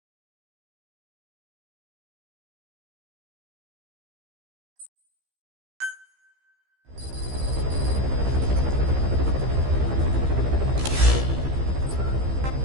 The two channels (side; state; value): left; late; 15 ms